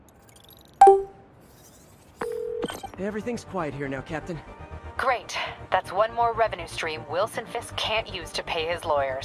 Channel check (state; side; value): identical; both; correlation 1.00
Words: Everything's quiet here now, Captain. Great. That's one more revenue stream Wilson Fisk can't use to pay his